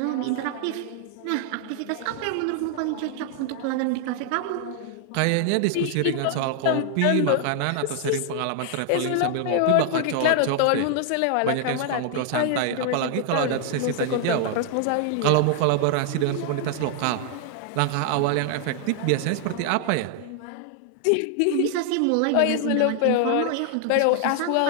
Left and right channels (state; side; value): different; both; correlation 0.00